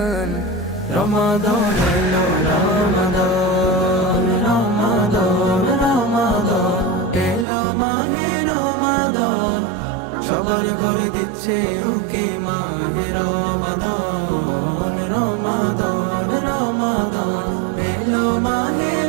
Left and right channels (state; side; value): drops out; left; at 7.5 s